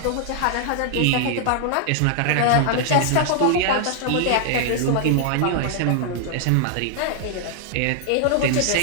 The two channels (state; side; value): different; both; correlation -0.01